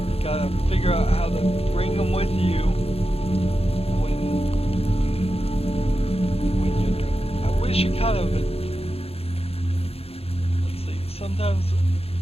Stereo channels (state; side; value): late; right; 0.29 ms